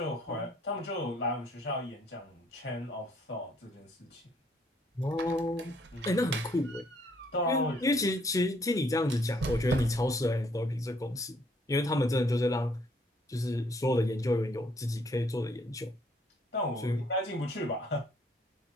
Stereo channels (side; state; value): both; normal; correlation 0.65